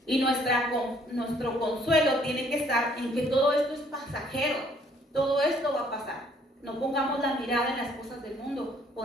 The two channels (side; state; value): both; normal; correlation 0.63